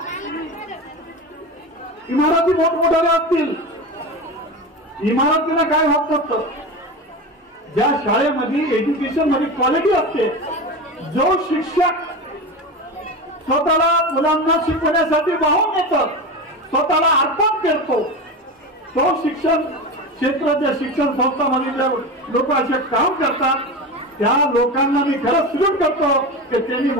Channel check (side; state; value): both; normal; correlation 0.24